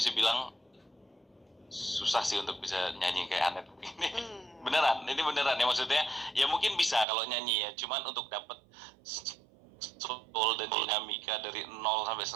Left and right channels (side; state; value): left; drops out; at 7.1 s